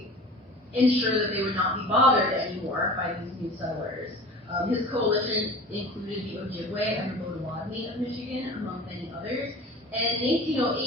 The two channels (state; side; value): normal; both; correlation 0.39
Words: ensure that they would not be bothered anymore by these new settlers. His coalition included the Ojibwe and the Potawatomi of Michigan, among many others. And in